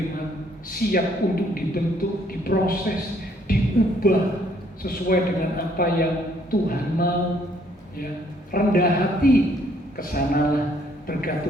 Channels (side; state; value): both; normal; correlation 0.65